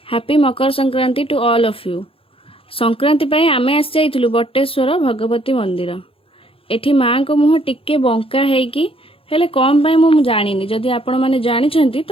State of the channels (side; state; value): right; late; 0.27 ms